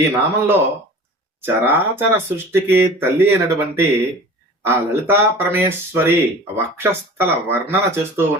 ఈ నామంలో చరాచర సృష్టికి తల్లి అయినటువంటి ఆ లలితా పరమేశ్వరి వక్షస్థల వర్ణన చేస్తూ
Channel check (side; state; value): both; normal; correlation 0.40